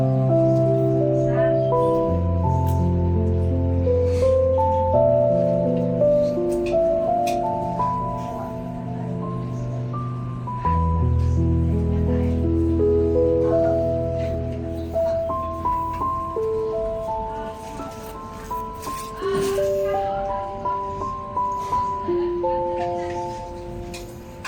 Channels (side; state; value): both; identical; correlation 1.00